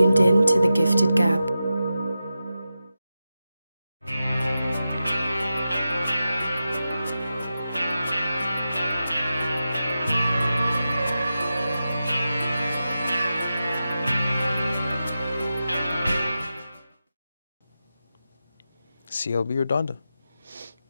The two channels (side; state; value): both; inverted; correlation -0.91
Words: in to The Gifted Gab. CLB or Donda?